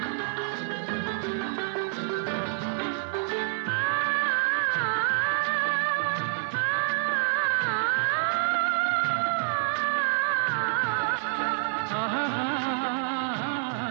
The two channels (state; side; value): silent; left; 60 dB below the other